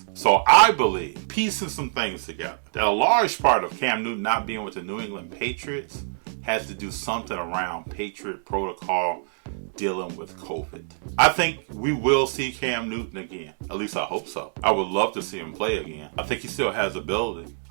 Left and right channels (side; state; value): left; silent; digital silence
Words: So I believe, piecing some things together, that a large part of Cam Newton not being with the New England Patriots has to do something around Patriot protocol, dealing with COVID. I think we will see Cam Newton again. At least I hope so. I would love to see him play again. I think he still has ability.